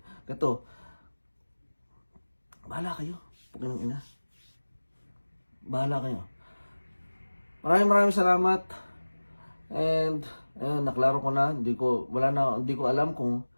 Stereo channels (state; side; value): inverted; both; correlation -1.00